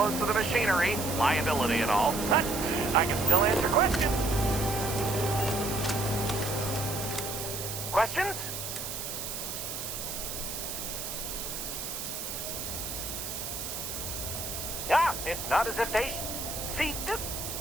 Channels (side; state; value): right; noise; hiss, 5 dB below the sound